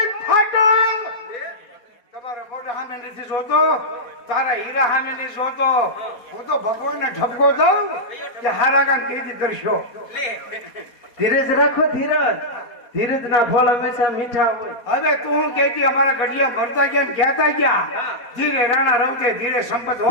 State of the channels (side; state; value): right; late; 4.2 ms